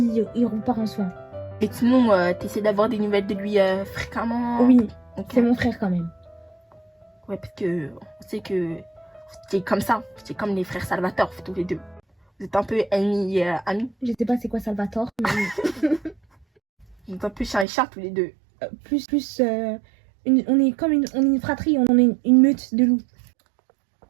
repart en soins. Et sinon, t'essaies d'avoir des nouvelles de lui fréquemment? Oui, okay. C'est mon frère quand même. Ouais, parce que on sait que c'est comme ça. C'est comme les frères Salvatore, tous les deux. Vous êtes un peu ennemis, amis. Je sais pas c'est quoi Salvatore, mais... Vous êtes un peu chien et chat, tous les deux. On est une fratrie, on est une meute de loups.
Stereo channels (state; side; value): drops out; left; at 17.7 s